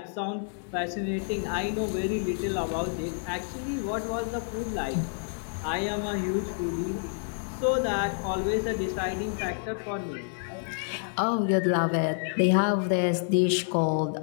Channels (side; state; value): right; silent; digital silence